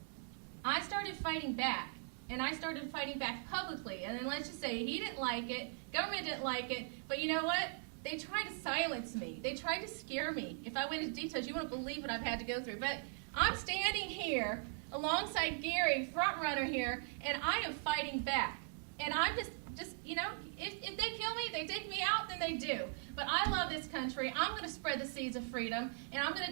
I started fighting back, and I started fighting back publicly. And then let's just say he didn't like it, government didn't like it, but you know what? They tried to silence me. They tried to scare me. If I went into details, you wouldn't believe what I've had to go through. But I'm standing here alongside Gary, front runner here, and I am fighting back. And I'm just you know, if they kill me, they take me out, then they do. But I love this country. I'm going to spread the seeds of freedom, and I'm going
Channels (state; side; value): silent; left; 51 dB below the other